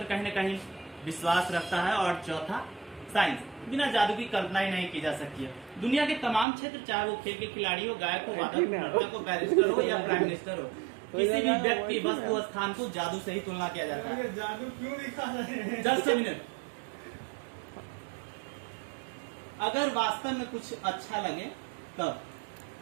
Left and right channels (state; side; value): drops out; left; at 6.5 s